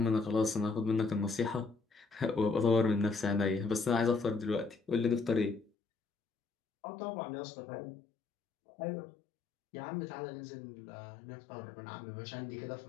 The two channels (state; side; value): drops out; right; at 5.7 s